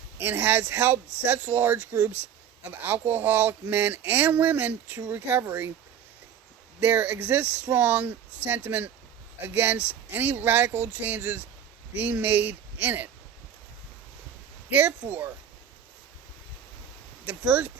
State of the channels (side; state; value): left; quieter; 8.8 dB